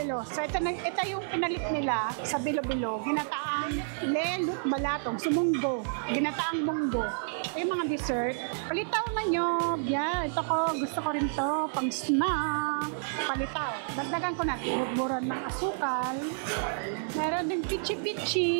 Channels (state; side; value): silent; left; digital silence